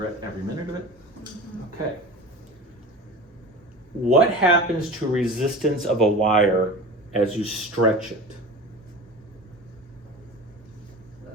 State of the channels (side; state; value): both; normal; correlation 0.34